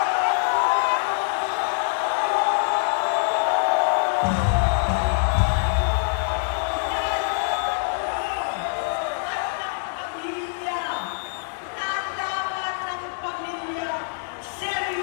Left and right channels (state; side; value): silent; right; 61 dB below the other